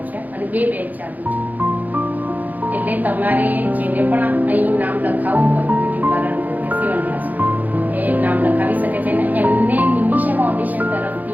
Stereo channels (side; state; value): left; late; 0.081 ms